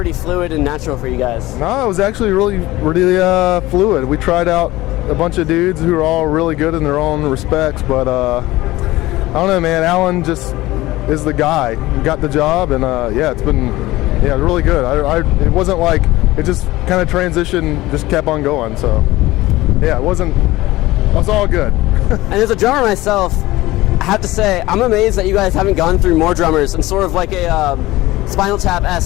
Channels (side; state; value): right; quieter; 18.1 dB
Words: fluid and natural for you guys? No, it was actually really fluid. We tried out a bunch of dudes who are all really good in their own respects, but I don't know, man. Alan just is the guy. He got the job, and it's been really good. It wasn't like it just kind of transitioned, just kept on going. So it was all good. And as a drummer myself, I have to say I'm amazed that you guys haven't gone through more drummers in sort of like a Spinal